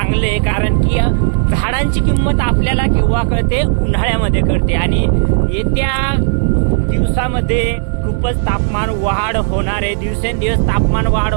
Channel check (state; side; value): silent; left; digital silence